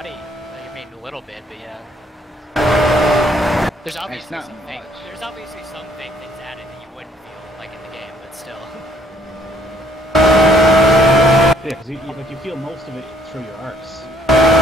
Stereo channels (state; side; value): normal; both; correlation 0.64